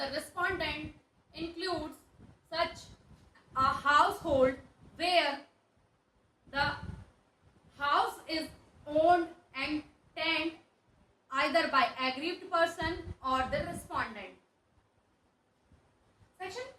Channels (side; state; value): both; identical; correlation 1.00